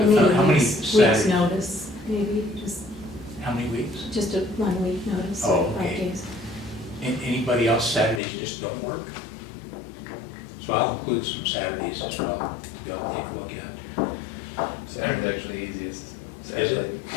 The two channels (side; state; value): right; drops out; at 8.2 s